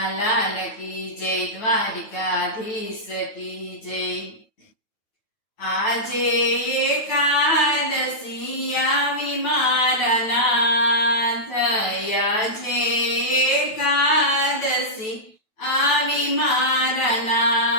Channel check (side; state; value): right; late; 9.1 ms